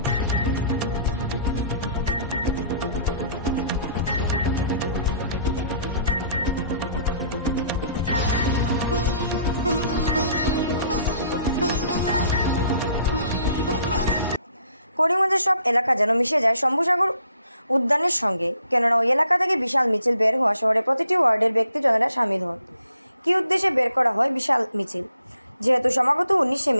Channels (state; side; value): inverted; both; correlation -0.63